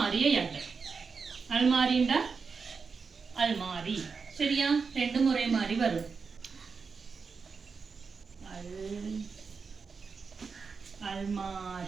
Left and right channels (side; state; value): left; quieter; 5.2 dB